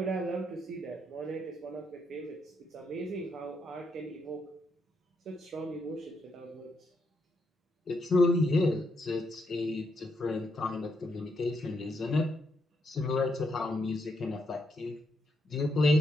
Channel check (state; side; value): normal; both; correlation 0.79